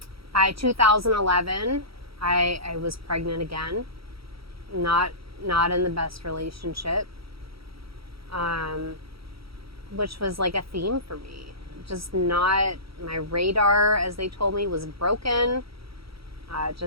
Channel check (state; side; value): late; left; 0.75 ms